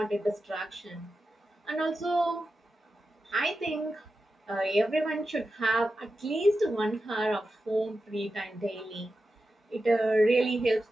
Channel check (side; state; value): both; normal; correlation 0.91